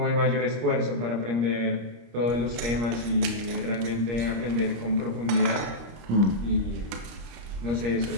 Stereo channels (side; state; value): left; late; 26 ms